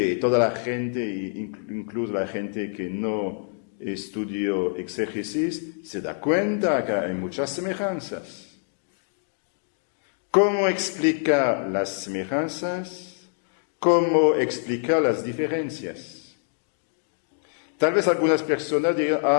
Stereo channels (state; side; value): silent; right; digital silence